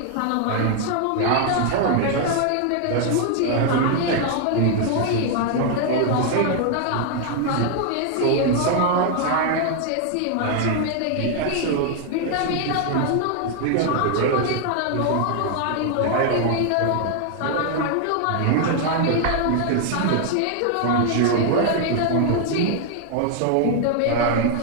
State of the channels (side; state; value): both; different; correlation 0.00